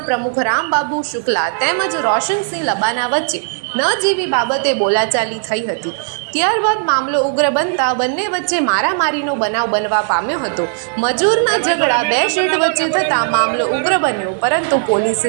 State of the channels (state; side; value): silent; left; digital silence